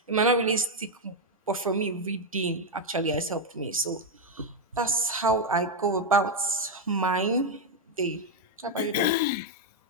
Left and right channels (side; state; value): both; normal; correlation 0.01